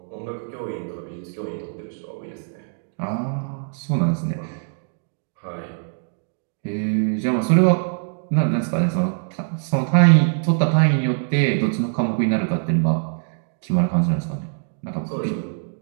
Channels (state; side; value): silent; left; 64 dB below the other